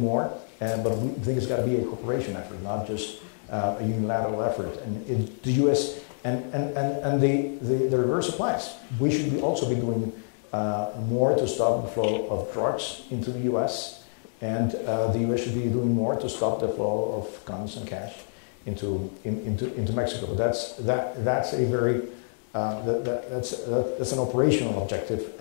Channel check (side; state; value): right; silent; digital silence